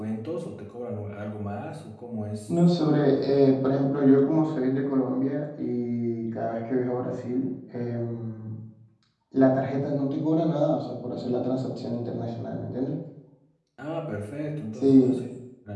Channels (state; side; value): identical; both; correlation 1.00